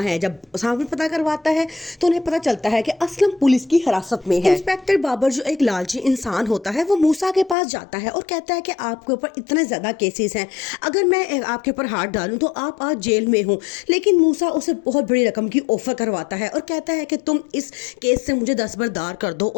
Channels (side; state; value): right; drops out; at 7.6 s